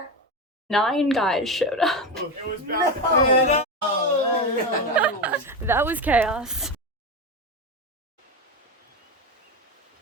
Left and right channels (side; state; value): both; normal; correlation 0.18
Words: 9 guys showed up. It was bad. No. That was chaos.